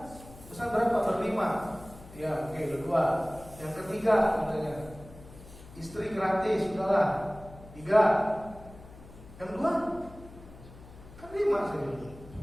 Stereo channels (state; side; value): noise; left; hum, 18 dB below the sound